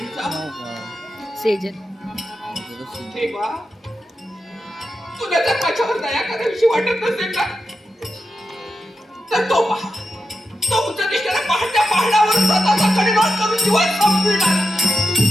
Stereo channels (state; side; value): normal; both; correlation 0.89